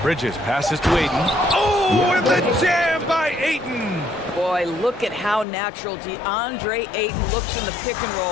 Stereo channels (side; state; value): right; drops out; at 5.5 s